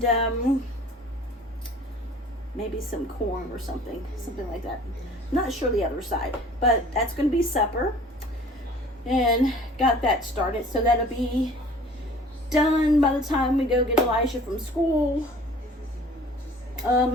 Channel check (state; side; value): normal; both; correlation 0.49